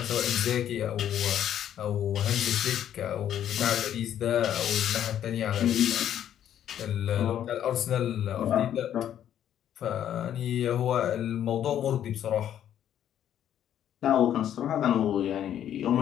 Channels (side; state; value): right; quieter; 10.5 dB